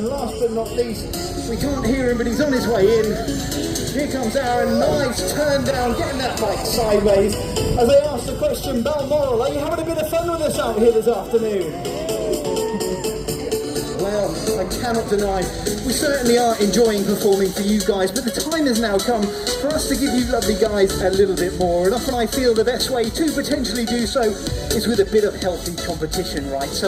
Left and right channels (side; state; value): both; identical; correlation 1.00